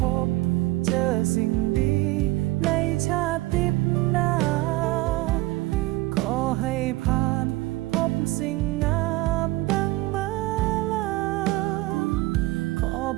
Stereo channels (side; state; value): left; quieter; 19.6 dB